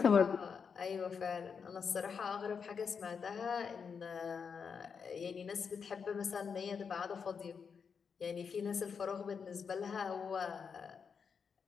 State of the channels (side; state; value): right; quieter; 6.2 dB